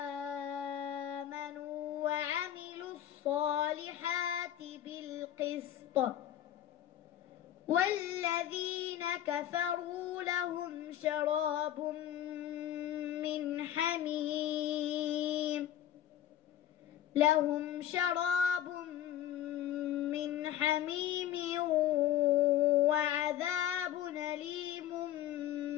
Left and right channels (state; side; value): quieter; right; 11.5 dB